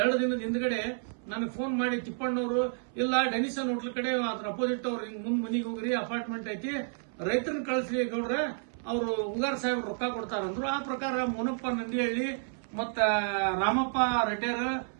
ದಿನದ ಹಿಂದ್ಗಡೆ ನನಗೆ ಫೋನ್ ಮಾಡಿ ತಿಪ್ಪಣ್ಣವರು, ಇಲ್ಲ ಡೆನಿಸನ್ ಹೋಟ್ಲ್ ಕಡೆ ಅದ್ರ ಅಪೋಸಿಟ್ ಅವ್ರು ಹಿಂಗ್ ಮುಂದ್ ಮನಿಗೆ ಹೋಗ್ರಿ, ಅಪಾರ್ಟ್ಮೆಂಟ್ ಐತಿ, ರೈತರನ್ನ ಕಳಿಸ್ಲಿ ಗೌಡ್ರೆ, ಅವರು ಉಗಾರ್ ಸಾಹೇಬ್ ರೊಕ್ಕ ಕೊಡ್ತಾರಂದ್ರು. ಆ ಪ್ರಕಾರ ಮೋನಪ್ಪ ನಂದಿಹಳ್ಳಿ ಮತ್ತ ರಾಮಪ್ಪ ರೆಡ್ಡೇರ್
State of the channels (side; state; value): left; silent; 57 dB below the other